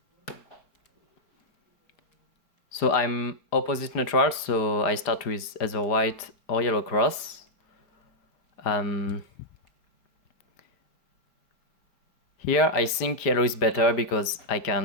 So I'm opposite neutral, so I start with either white or yellow cross. Here I think yellow is better because I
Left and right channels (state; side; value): late; right; 5.0 ms